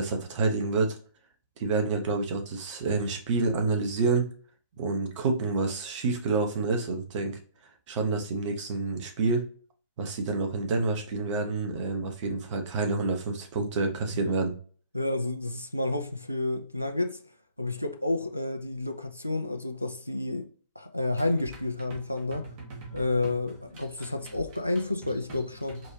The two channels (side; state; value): both; inverted; correlation -0.60